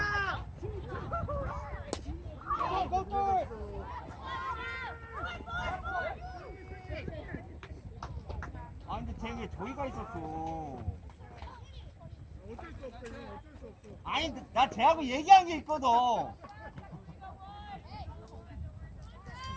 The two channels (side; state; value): both; identical; correlation 1.00